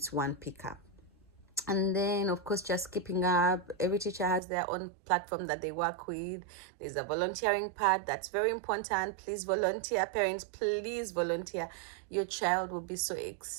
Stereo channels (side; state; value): left; drops out; at 4.4 s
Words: one pickup. And then, of course, just keeping up. Every teacher has their own platform that they work with. There's a volunteering part that's very important. Please volunteer. Parents, please volunteer. Your child will be so